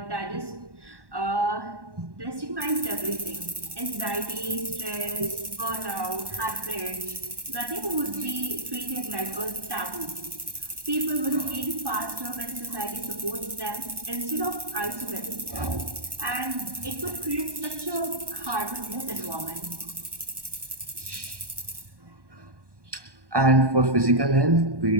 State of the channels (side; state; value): left; late; 1.1 ms